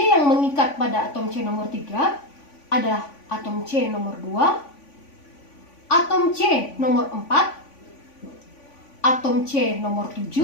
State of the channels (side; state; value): right; late; 3.5 ms